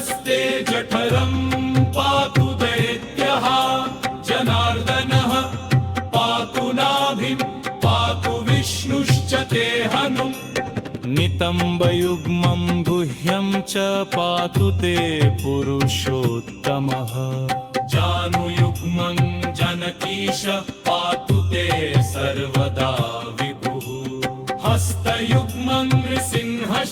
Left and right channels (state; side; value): identical; both; correlation 1.00